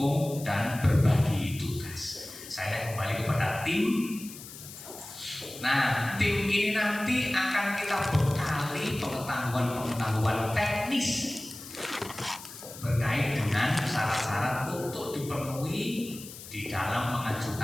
dan berbagi tugas. Saya kembali kepada tim. Nah, tim ini nanti akan kita bekali pengetahuan-pengetahuan teknis berkait dengan syarat-syarat untuk dipenuhi di dalam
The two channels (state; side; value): noise; left; hiss, 14 dB below the sound